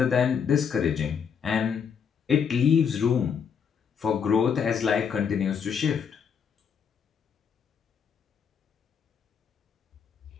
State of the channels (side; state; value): right; quieter; 7.0 dB